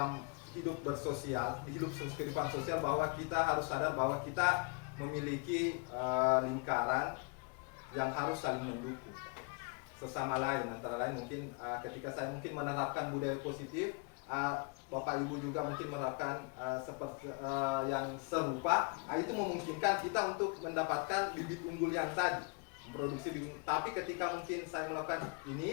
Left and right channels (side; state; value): right; quieter; 31.3 dB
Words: hidup bersosial, di hidup kehidupan sosial, bahwa kita harus sadar bahwa kita memiliki lingkaran yang harus saling mendukung sesama lain. Antara lain mungkin ketika saya mungkin menerapkan budaya positif, Bapak Ibu juga mungkin menerapkan seperti yang serupa, itu memungkinkan kita untuk mendapatkan bibit unggul yang tadi, memproduksi bibit. Tapi ketika mungkin saya melakukan